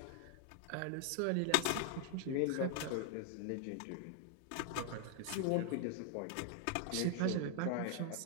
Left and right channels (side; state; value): both; different; correlation 0.00